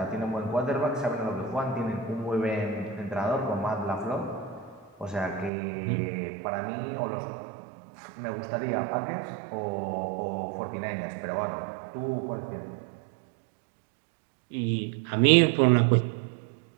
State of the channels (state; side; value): drops out; left; at 5.5 s